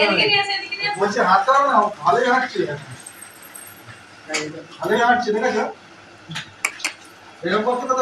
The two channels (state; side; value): identical; both; correlation 1.00